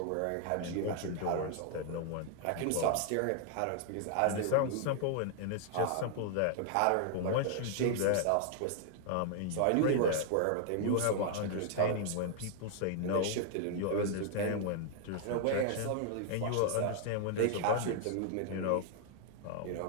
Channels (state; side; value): different; both; correlation 0.00